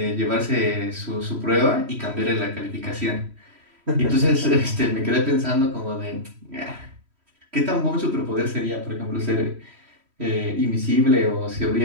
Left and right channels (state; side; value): late; left; 3.1 ms